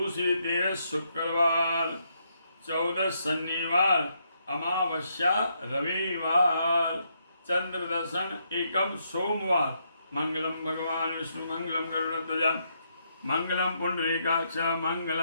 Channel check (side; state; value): both; inverted; correlation -0.77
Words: 13 शुक्रवार, 14 शनिवार, अमावस्या रविवार, चंद्र दर्शन एकम सोमवार। मंगलम भगवान विष्णु मंगलम गरुड़ध्वज मंगलम पुंडरीकाक्ष